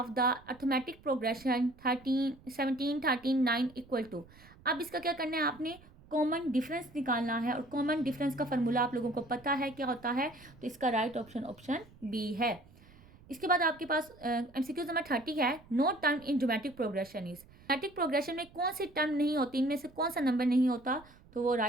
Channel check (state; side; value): noise; right; rumble, 24 dB below the sound